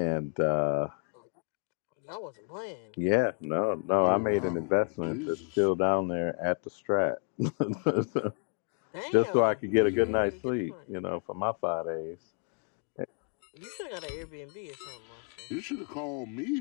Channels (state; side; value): quieter; right; 39.2 dB